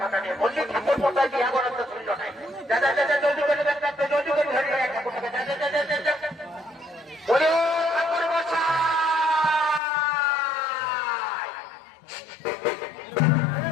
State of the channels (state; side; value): drops out; right; at 9.8 s